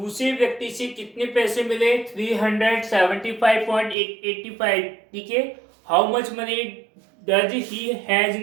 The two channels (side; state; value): left; drops out; at 4.0 s